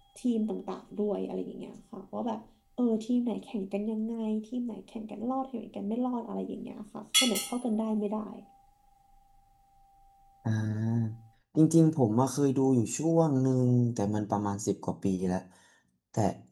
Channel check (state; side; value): identical; both; correlation 1.00